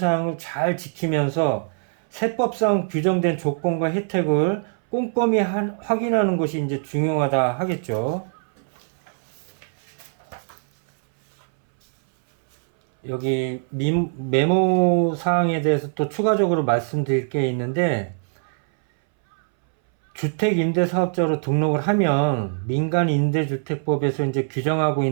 잘 지키면서 세법상 규정된 조건과 혜택을 꼼꼼히 확인하는 것이 이제 중요하다 하겠죠. 여기 메모 사항에 대해서 또 추가적으로 말씀드릴 게 있는데, 주택임대사업자로 등록을 하면 민간임대주택법에서 이제 규정하고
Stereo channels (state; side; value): silent; left; 62 dB below the other